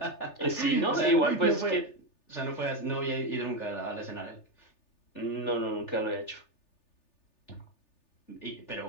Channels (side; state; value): right; late; 3.4 ms